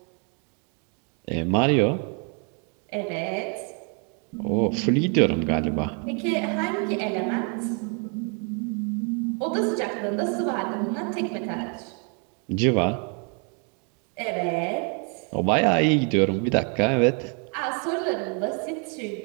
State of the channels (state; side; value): quieter; left; 37.9 dB